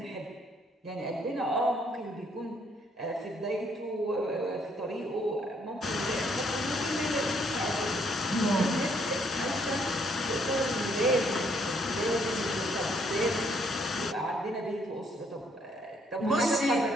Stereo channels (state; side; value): normal; both; correlation 0.68